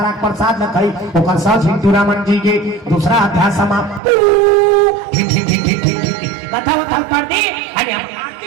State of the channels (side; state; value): left; drops out; at 4.0 s